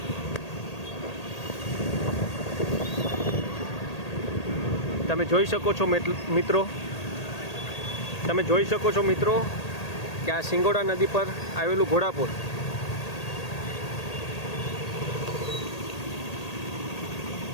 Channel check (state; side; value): late; right; 1.8 ms